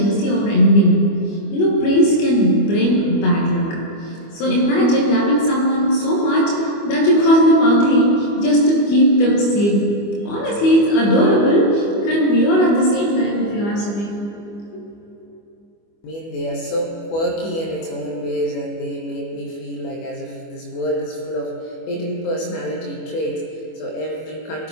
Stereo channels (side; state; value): right; late; 25 ms